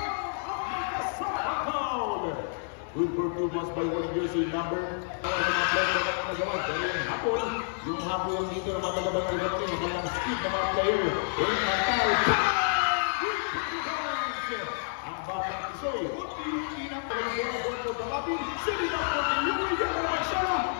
Good for 2 points by winning jersey number. Ang mga player na nagawa. Dahil yung hapon, yung dito ng mga Barangay Kamuning, ang speed ng mga player. Yung Mantal. Ang batang Isoy. Inang pagkakas for Gabaki. Sitting up for the Yuri Yara siya.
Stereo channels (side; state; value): right; silent; 58 dB below the other